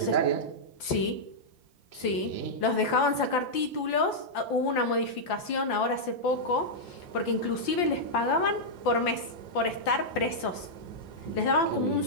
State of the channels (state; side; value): late; right; 5.8 ms